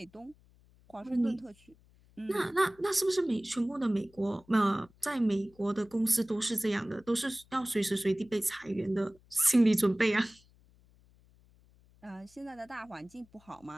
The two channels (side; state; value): left; noise; hum, 29 dB below the sound